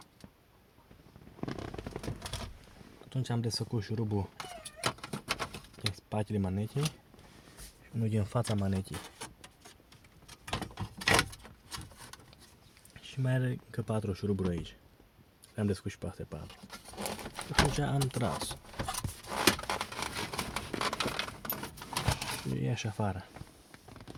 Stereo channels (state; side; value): identical; both; correlation 1.00